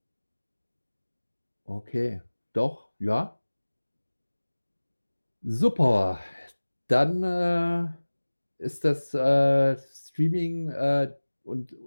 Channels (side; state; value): both; inverted; correlation -1.00